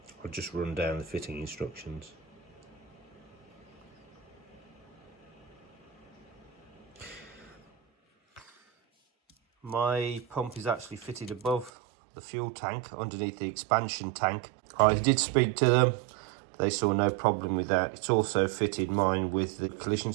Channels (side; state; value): left; drops out; at 11.7 s